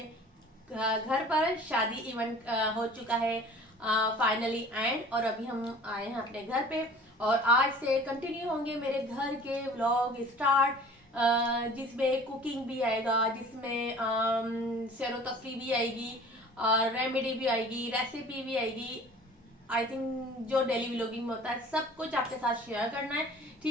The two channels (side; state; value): both; normal; correlation 0.46